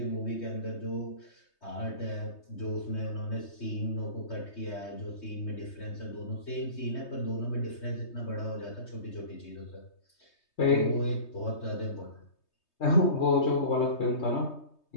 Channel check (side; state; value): right; late; 3.2 ms